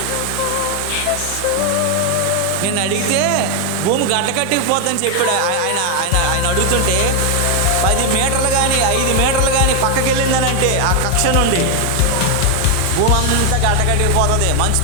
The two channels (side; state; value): both; different; correlation 0.01